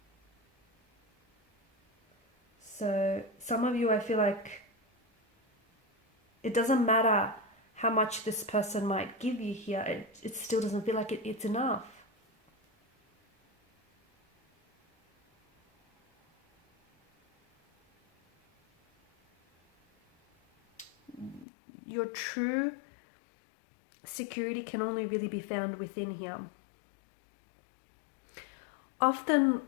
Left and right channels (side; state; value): right; drops out; at 21.5 s